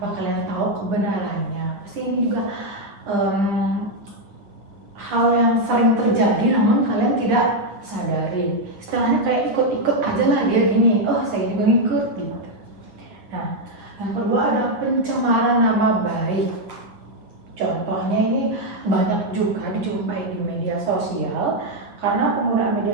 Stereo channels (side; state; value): left; late; 9.9 ms